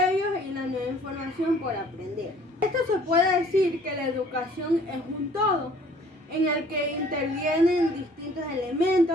y la nueva información por aprender. Esto se puede decir que la educación es un todo, en el que intervienen distintos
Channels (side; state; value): both; normal; correlation 0.55